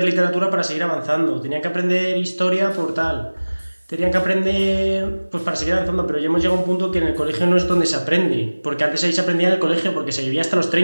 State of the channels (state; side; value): inverted; both; correlation -1.00